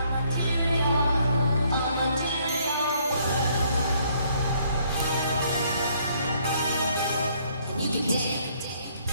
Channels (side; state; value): both; inverted; correlation -0.66